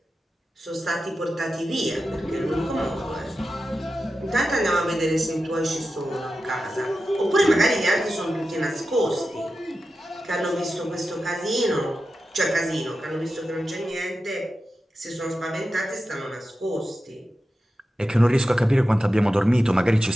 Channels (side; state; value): both; normal; correlation 0.92